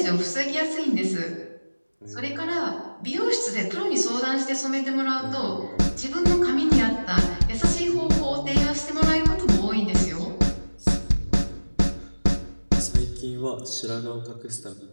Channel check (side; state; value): both; inverted; correlation -1.00